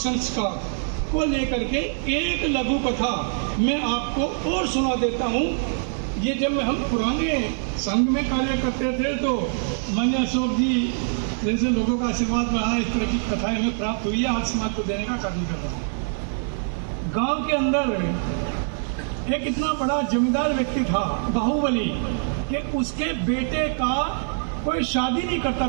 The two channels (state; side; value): silent; left; digital silence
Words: को लेकर के एक लघु कथा मैं आपको और सुना देता हूँ। ये जब हम पुराने संघ में कार्य करते थे तो मान्य अशोक जी जैसे लोगों का आशीर्वाद रहा, इस तरह की कथाएं हमें प्राप्त हुई है, आज समाज को देने का कार्य कर रहा हूँ। गांव के अंदर एक इतना बड़ा जमींदार व्यक्ति था बाहुबली, कि उसके बेटे का कोई शादी नहीं करता